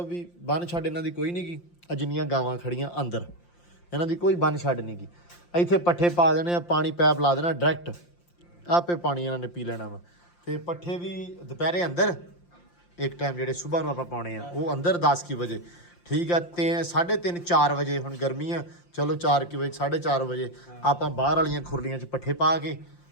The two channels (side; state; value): right; late; 5.7 ms